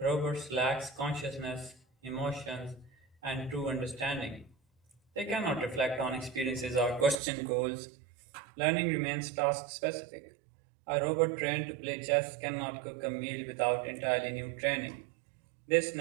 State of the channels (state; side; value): drops out; left; at 7.2 s